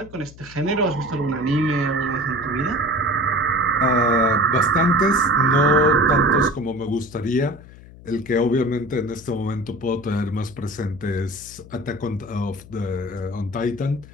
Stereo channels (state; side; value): noise; left; hum, 19 dB below the sound